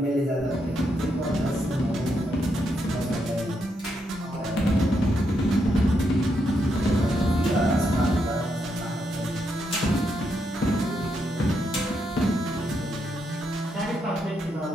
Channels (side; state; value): both; normal; correlation 0.80